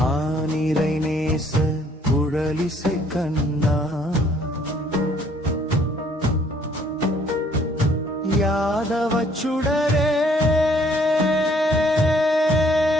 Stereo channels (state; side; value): normal; both; correlation 0.62